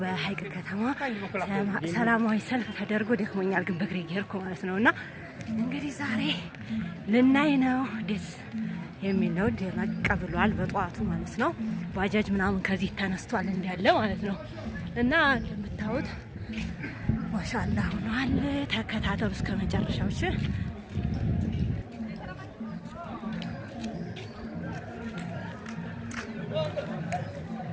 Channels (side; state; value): both; identical; correlation 1.00